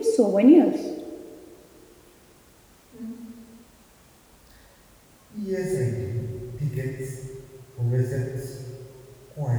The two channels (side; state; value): both; identical; correlation 1.00